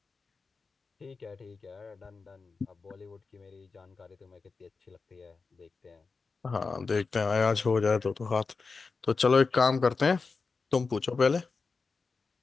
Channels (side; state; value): right; quieter; 4.5 dB